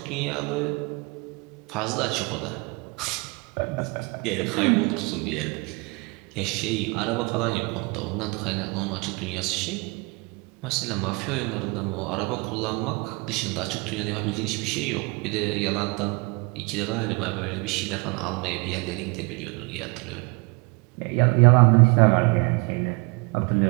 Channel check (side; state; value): left; quieter; 29.1 dB